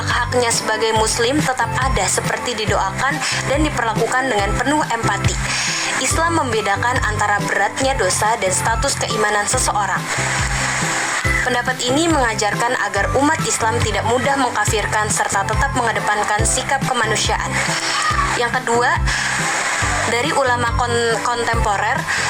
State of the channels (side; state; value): both; identical; correlation 1.00